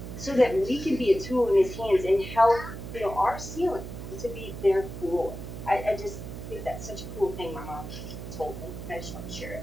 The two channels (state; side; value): noise; right; hum, 9 dB below the sound